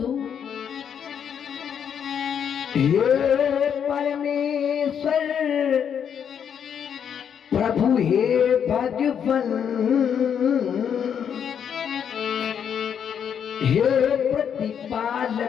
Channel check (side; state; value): right; quieter; 8.1 dB